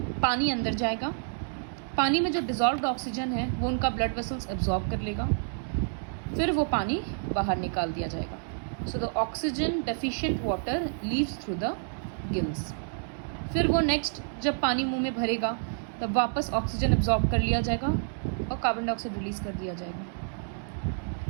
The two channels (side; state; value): left; silent; digital silence